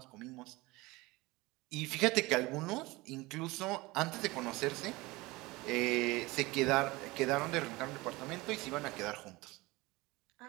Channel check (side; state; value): left; quieter; 22.0 dB